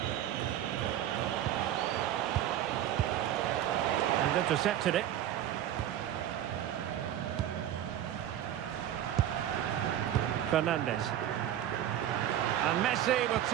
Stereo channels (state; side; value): quieter; left; 11.5 dB